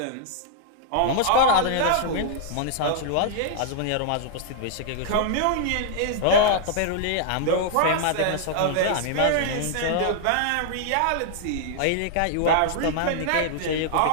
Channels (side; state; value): both; different; correlation -0.01